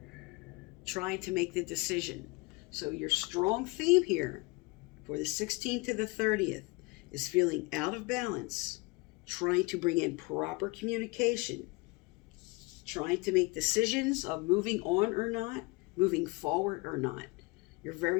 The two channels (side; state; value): right; quieter; 25.4 dB